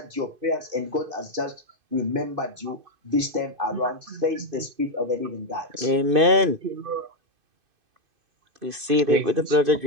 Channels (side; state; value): left; late; 2.5 ms